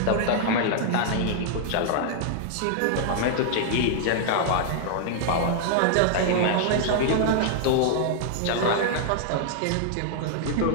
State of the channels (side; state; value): both; different; correlation -0.01